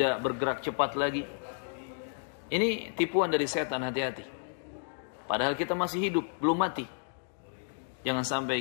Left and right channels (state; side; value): silent; right; digital silence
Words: bergerak cepat lagi. Ini tipuan dari setan, hati-hati. Padahal kita masih hidup, belum mati. Jangan